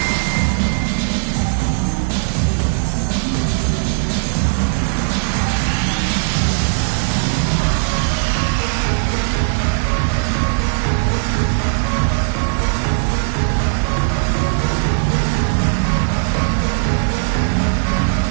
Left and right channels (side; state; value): left; silent; digital silence